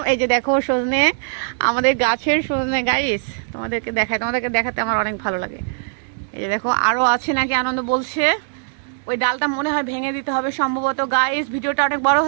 এই যে দেখো সজনে, আমাদের গাছের সজনে গাইস। তোমাদেরকে দেখাতে আমার অনেক ভালো লাগে। এই যে দেখো আরো আছে নাকি আনন্দ বলছে। ওই ডালটা মনে হয় ভেঙে দিতে হবে সম্ভবত। গাইস ভিডিওটা অনেক বড়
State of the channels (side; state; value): left; silent; digital silence